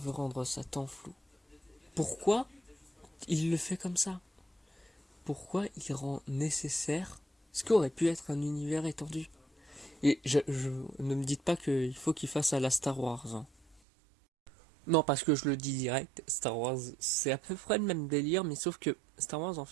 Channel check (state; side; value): drops out; left; at 13.8 s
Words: rendre ça tant flou, pourquoi il le fait comme ça? Pourquoi il rend nécessaire ce qu'aurait pu être un univers étendu? Et ne me dites pas qu'il faut qu'il fasse à la Star Wars. Hein. Non, parce que je le dis direct, Star Wars, c'est à peu près le même délire, mais sauf que Star Wars, en